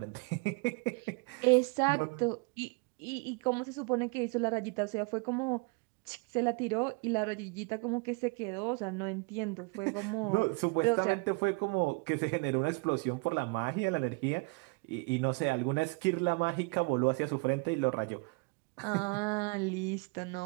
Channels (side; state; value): left; quieter; 30.7 dB